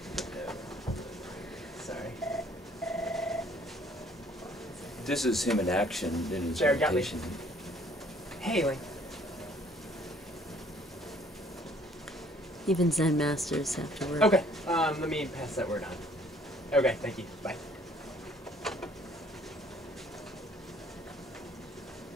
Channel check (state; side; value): normal; both; correlation 0.59